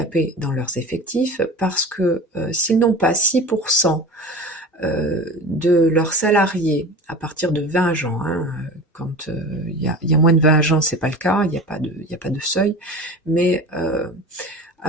dans leurs effectifs, parce que s'ils n'ont pas 6% de leurs salariés à partir de 20 agents, quand il y a moins de 20 agents, c'est pas le cas, il n'y a pas de seuil, mais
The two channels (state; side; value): normal; both; correlation 0.35